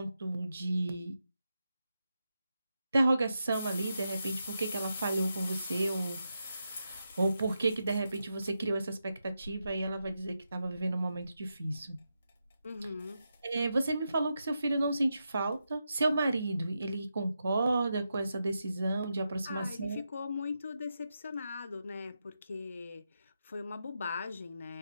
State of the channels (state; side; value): inverted; both; correlation -0.87